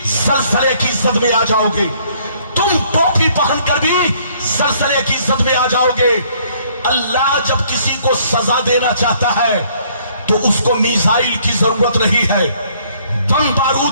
सलसले की इज्जत में आ जाओगे, तुम टोपी पहनकर भी सलसले की इज्जत में आ जाओगे। अल्लाह जब किसी को सजा देना चाहता है तो उसको मिसाइल की जरूरत नहीं है, बम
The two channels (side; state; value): both; inverted; correlation -0.63